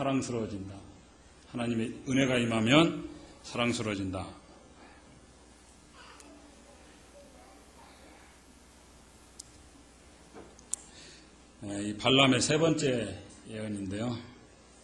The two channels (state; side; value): identical; both; correlation 1.00